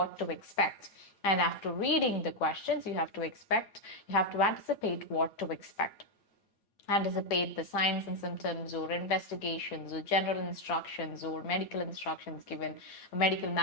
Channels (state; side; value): late; right; 9.1 ms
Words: to expect. And after reading the questions, you have to anticipate what to expect. Anticipate the signs and symptoms or investigations or general instructions or medical instructions given, medical